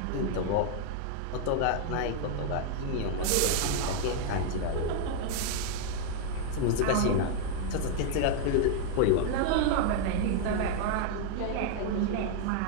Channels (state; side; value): different; both; correlation 0.00